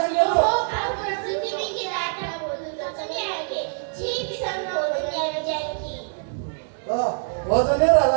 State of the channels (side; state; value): left; silent; digital silence